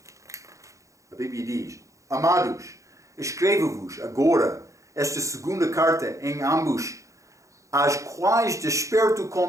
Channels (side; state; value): left; late; 0.15 ms